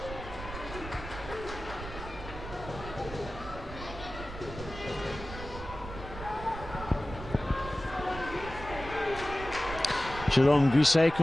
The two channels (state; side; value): noise; right; rumble, 11 dB below the sound